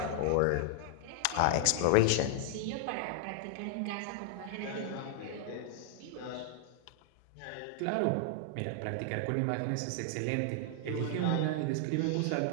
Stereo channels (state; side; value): different; both; correlation 0.00